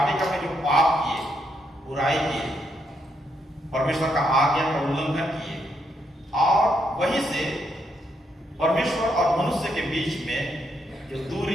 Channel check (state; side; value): normal; both; correlation 0.77